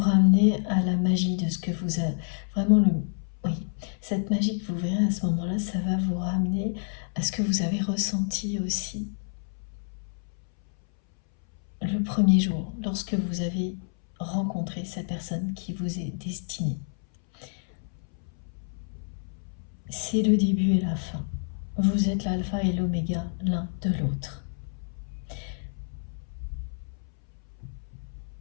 à la magie de ce que vous avez. Vraiment, oui, cette magie que vous verrez à ce moment-là, ça va vous ramener à ce que vous avez ressenti aussi le premier jour, lorsque vous avez rencontré cette personne qui vous est destinée. C'est le début et la fin. Vous êtes l'alpha et l'oméga l'un de l'autre.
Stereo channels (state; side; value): silent; right; 59 dB below the other